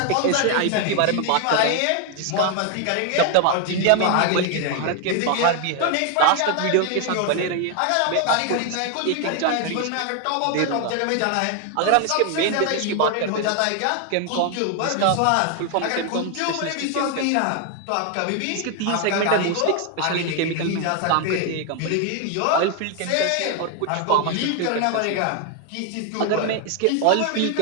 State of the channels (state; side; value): different; both; correlation 0.00